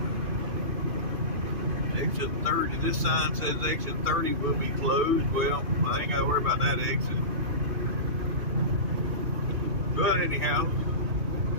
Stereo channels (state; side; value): late; left; 2.6 ms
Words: exit 30, this sign says exit 30 will be closed. Well, I ain't got to worry about that exit. But anyhow,